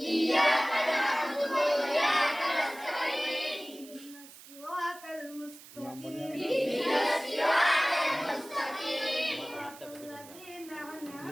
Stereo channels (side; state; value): right; noise; hiss, 19 dB below the sound